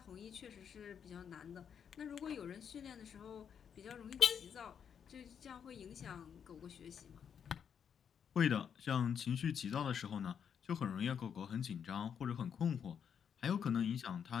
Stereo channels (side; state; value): right; quieter; 7.7 dB